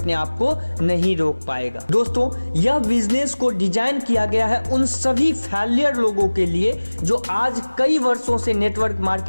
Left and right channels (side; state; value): both; inverted; correlation -1.00